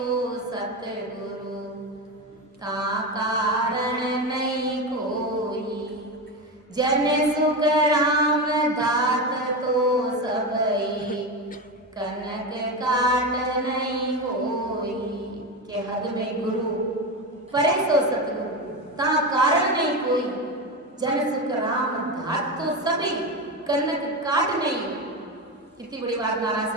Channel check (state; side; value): normal; both; correlation 0.18